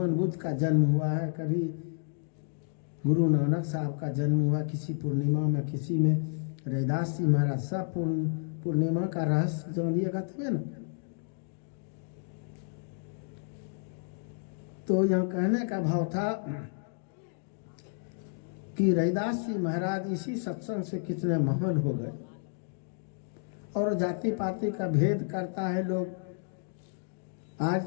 बुद्ध का जन्म हुआ है, कभी गुरु नानक साहब का जन्म हुआ किसी पूर्णिमा में, किसी में रविदास जी महाराज। सब पूर्णिमा का रहस्य जानिएगा तबे ना। तो यहाँ कहने का भाव था कि रविदास जी महाराज इसी सत्संग से कितने महान हो गए। और जाति पाति का भेद करता है लोग। आज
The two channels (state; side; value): silent; right; digital silence